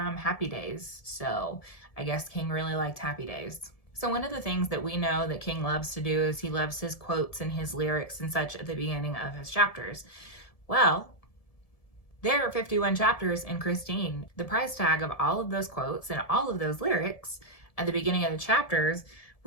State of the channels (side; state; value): right; late; 1.7 ms